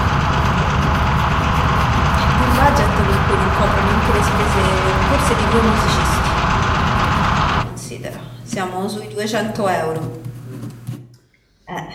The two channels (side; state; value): both; identical; correlation 1.00